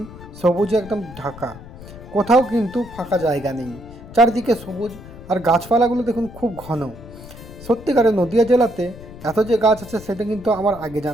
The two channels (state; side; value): noise; left; rumble, 16 dB below the sound